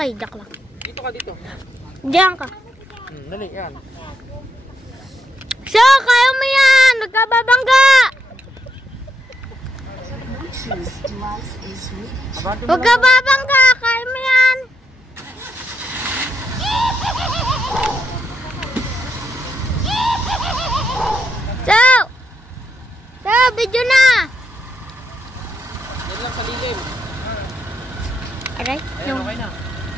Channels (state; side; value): normal; both; correlation 0.79